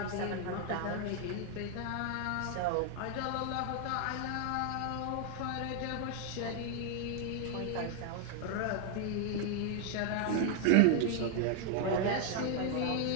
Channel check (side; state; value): both; different; correlation 0.00